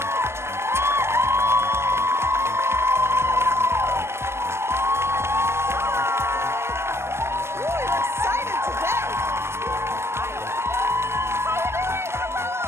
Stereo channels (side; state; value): left; late; 0.12 ms